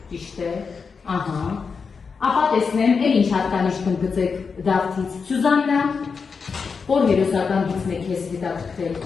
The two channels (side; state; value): right; quieter; 5.4 dB